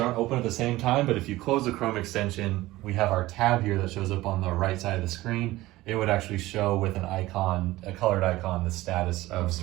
open at the same time, but if you close the Chrome extension, we have our tab here that shows up on the right side of the screen. It would actually show with an icon, a colored icon, the status of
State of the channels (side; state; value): left; quieter; 17.8 dB